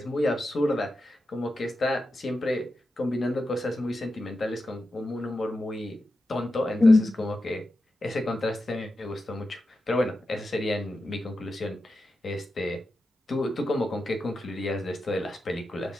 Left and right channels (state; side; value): normal; both; correlation 0.90